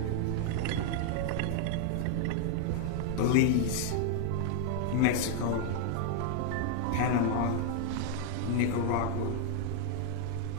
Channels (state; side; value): different; both; correlation 0.00